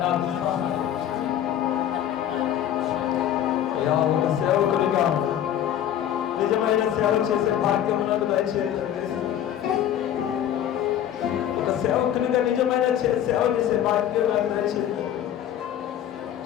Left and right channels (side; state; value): right; quieter; 10.8 dB